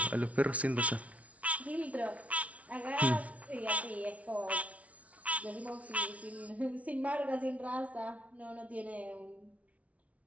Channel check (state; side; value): late; left; 0.067 ms